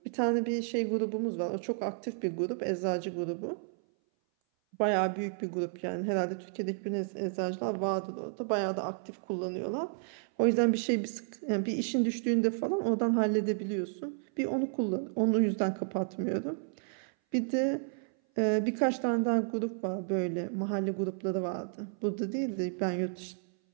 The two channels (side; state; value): left; silent; 56 dB below the other